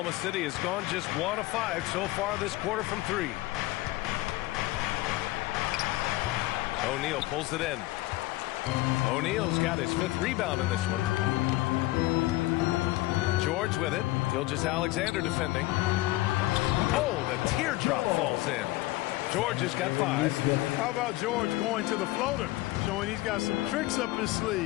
City has gone just 1 of 5 so far this quarter from three. O'Neal pulls it in. O'Neal's got his 5th rebound in this one. George with it. Gilgeous-Alexander defending. Oh, the teardrop falls in. George has got 5. How about George going to the floater, showing he's got some tricks up his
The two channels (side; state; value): right; quieter; 18.5 dB